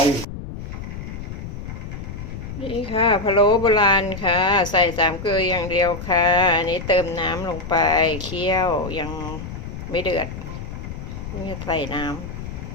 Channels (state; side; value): noise; left; rumble, 9 dB below the sound